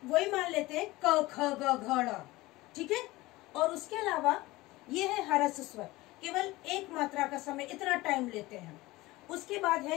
वही मान लेते हैं क, ख, ग, घ, ङ, ठीक है। और उसके अलावा ये है ह्रस्व स्वर, केवल एक मात्रा का समय, इतना टाइम लेते हैं। उसके बाद है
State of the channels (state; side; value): quieter; right; 19.6 dB